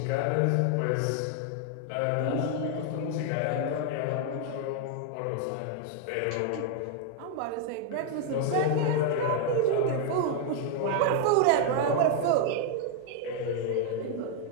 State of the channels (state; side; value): different; both; correlation 0.01